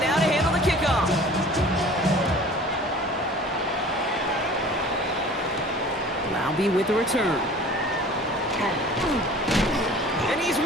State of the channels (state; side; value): normal; both; correlation 0.45